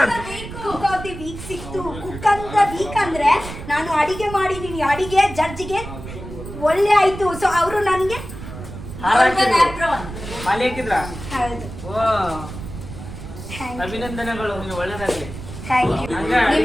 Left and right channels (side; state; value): right; noise; rumble, 11 dB below the sound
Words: ಕುಕ್ ಆಫ್ ದಿ ವೀಕ್ ಸಿಕ್ತು. ಕುಕ್ ಅಂತ ವೀಕ್ ಅಂದ್ರೆ ನಾನು ಅಡಿಗೆ ಮಾಡಿದೀನಿ, ಅಡಿಗೆ ಜಡ್ಜ್ಗೆ ಒಳ್ಳೆ ಆಯ್ತು. ಸೊ ಅವರು ನನಗೆ ಅಭಿನಂದನೆಗಳು, ಒಳ್ಳೆದಾಗಲಿ. Thank you.